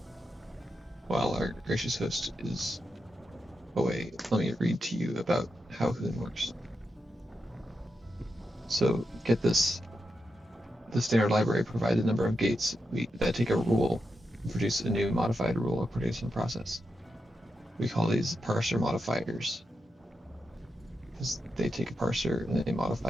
while our gracious host is away, let me read to you about how Hoon works. So, get this. The standard library provides a number of gates that take a rule and produce a new modified rule or production process. We call these parser modifiers because they take a parser and they modify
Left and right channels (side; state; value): both; normal; correlation 0.86